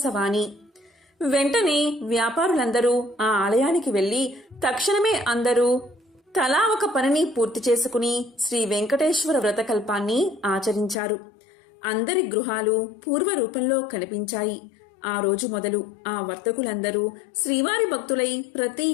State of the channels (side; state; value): right; drops out; at 11.0 s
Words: వెంటనే వ్యాపారులందరూ ఆ ఆలయానికి వెళ్లి తక్షణమే అందరూ తలా ఒక పనిని పూర్తి చేసుకుని శ్రీ వెంకటేశ్వర వ్రతకల్పాన్ని ఆచరించారు. అందరి గృహాలు పూర్వ రూపంలో కనిపించాయి. ఆ రోజు మొదలు ఆ వర్తకులందరూ శ్రీవారి భక్తులై ప్రతి